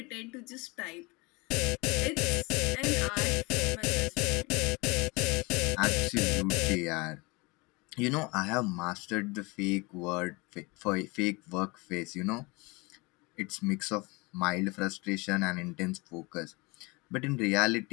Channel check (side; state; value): right; quieter; 26.4 dB